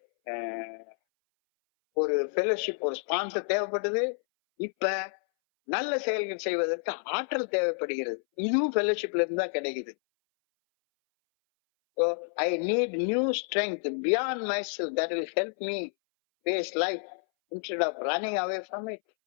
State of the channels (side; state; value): right; silent; 58 dB below the other